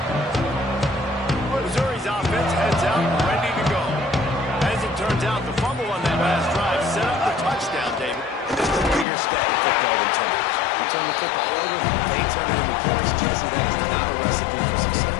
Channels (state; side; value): drops out; right; at 9.1 s